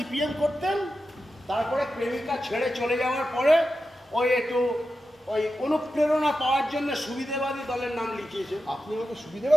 করতেন, তারপরে প্রেমিকা ছেড়ে চলে যাওয়ার পরে ওই একটু ওই অনুপ্রেরণা পাওয়ার জন্য সুবিধাবাদী দলের নাম লিখিয়েছে। আপনি আমাকে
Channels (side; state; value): both; normal; correlation 0.91